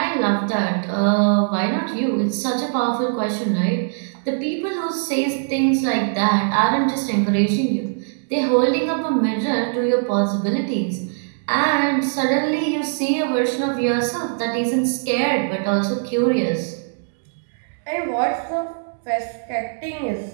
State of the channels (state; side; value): silent; left; digital silence